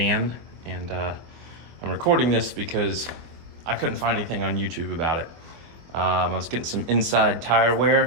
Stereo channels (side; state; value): left; late; 24 ms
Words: and I'm recording this because I couldn't find anything on YouTube about it. I was getting some inside tire